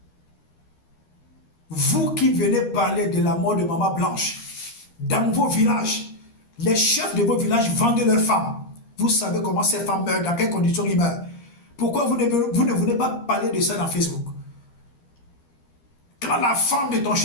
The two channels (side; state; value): right; late; 13 ms